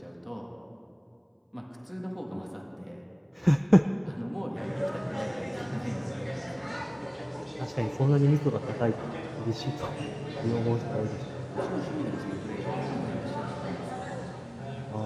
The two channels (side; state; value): both; identical; correlation 1.00